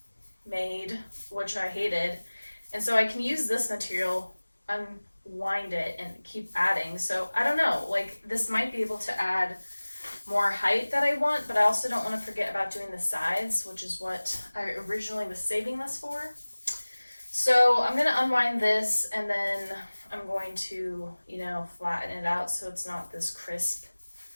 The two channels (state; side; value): inverted; both; correlation -1.00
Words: made, which I hated, and so I can use this material, unwind it, and keep adding. So I don't know, like this might be able to add more height that I want, but I also don't want to forget about doing the sides, which is what I originally was saving this for. So I'm gonna unwind this, and then I'm going to, flatten it out so it's not this crisp